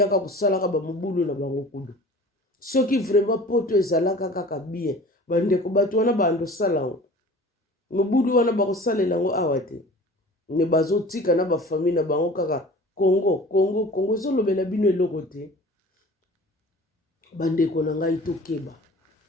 kosalaka bamobulu na bango kudu soki vraiment poto ezalaka kaka bien bandeko bato wana bandosala yango mobudu wana bakosalela yango awa te me bazotika na bafamille na bango kaka Congo ezolobela bino eloko te. Bandeko na ngai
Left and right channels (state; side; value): normal; both; correlation 0.43